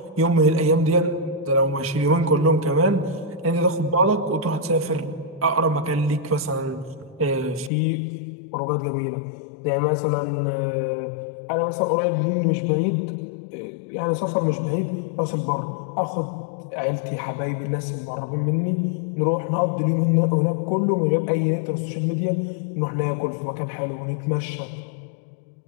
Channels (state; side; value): drops out; right; at 7.7 s